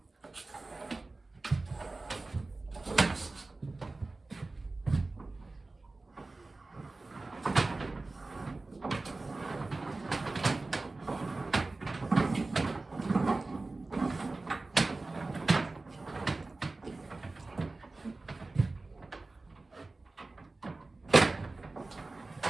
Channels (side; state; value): left; quieter; 3.3 dB